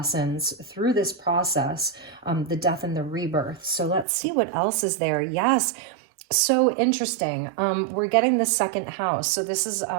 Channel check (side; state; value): left; drops out; at 4.0 s